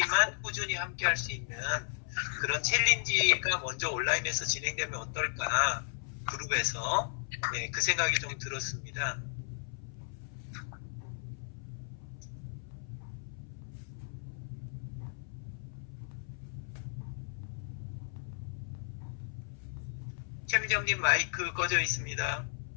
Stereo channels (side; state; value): right; silent; 55 dB below the other